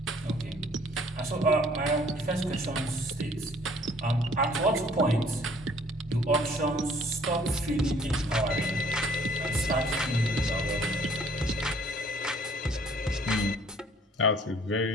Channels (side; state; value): both; normal; correlation 0.57